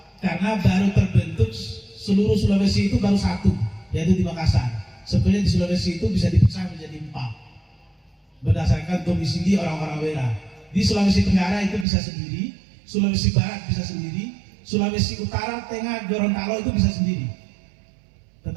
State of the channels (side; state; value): left; drops out; at 11.9 s